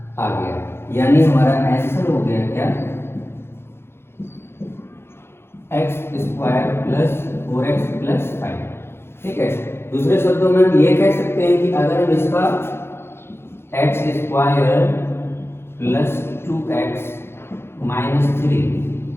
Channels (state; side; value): late; right; 0.12 ms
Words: आ गया। यानी हमारा आंसर हो गया क्या, x square plus 4x plus 5, ठीक है। दूसरे शब्दों में हम ये कह सकते हैं कि अगर हम इसका x square plus 2x minus 3